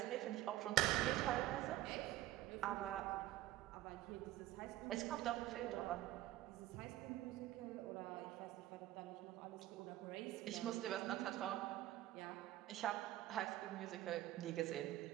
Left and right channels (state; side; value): quieter; left; 14.8 dB